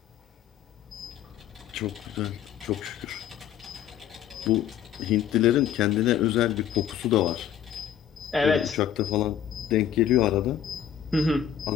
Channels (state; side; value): quieter; right; 9.6 dB